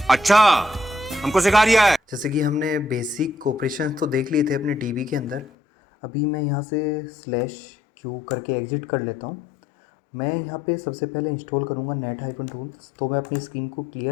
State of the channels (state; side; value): drops out; right; at 5.5 s